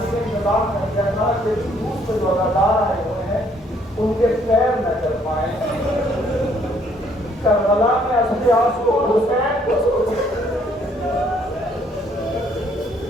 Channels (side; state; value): both; normal; correlation 0.65